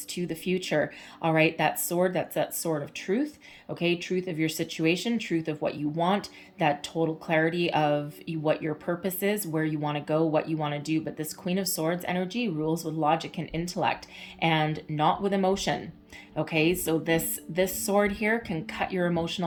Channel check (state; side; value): identical; both; correlation 1.00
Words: to the future. All right, that sword, that's that sword of truth, okay, truth of your situation, truth of what you want, that total clarity of what your purpose is, where you want to go, what you want to do. But this Queen of Swords energy rules with logic and intellect and not with emotion. Okay, so this sword here can cut your